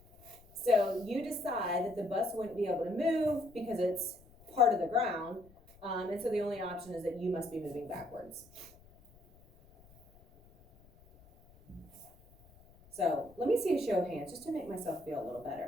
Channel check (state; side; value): noise; left; rumble, 26 dB below the sound